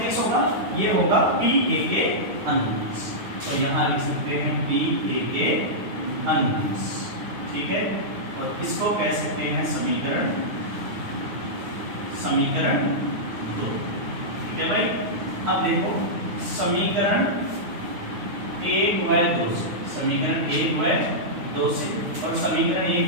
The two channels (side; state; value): left; late; 9.4 ms